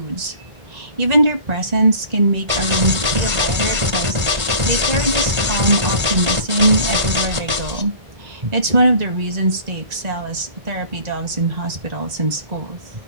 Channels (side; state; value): left; late; 1.5 ms